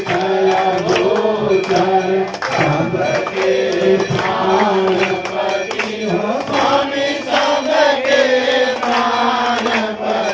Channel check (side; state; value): both; identical; correlation 1.00